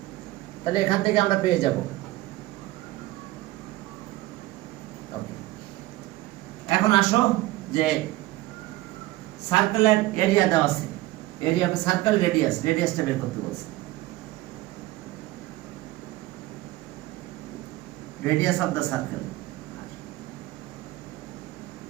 তাহলে এখান থেকে আমরা পেয়ে যাব। ওকে এখন আসো যে সার্কেলের এরিয়া দেওয়া আছে, এরিয়া অফ সার্কেল রেডিয়াস, রেডিয়াসটা বের করতে বলছে। Radius of the circle,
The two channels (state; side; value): quieter; left; 17.9 dB